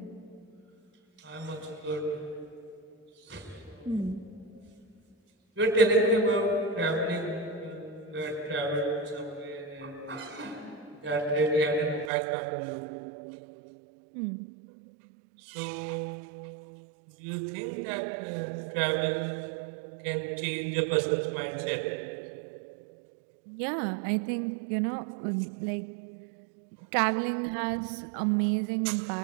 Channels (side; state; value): left; drops out; at 12.1 s